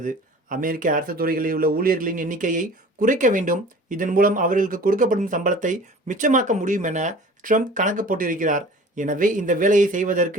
அமெரிக்க அரசு துறைகளில் உள்ள ஊழியர்களின் எண்ணிக்கையை குறைக்க வேண்டும், இதன் மூலம் அவர்களுக்கு கொடுக்கப்படும் சம்பளத்தை மிச்சமாக்க முடியும் என ட்ரம்ப் கணக்கு போட்டிருக்கிறார். எனவே இந்த வேலையை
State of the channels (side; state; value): both; normal; correlation 0.44